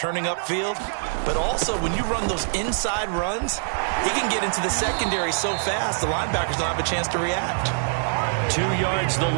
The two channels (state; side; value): silent; left; 62 dB below the other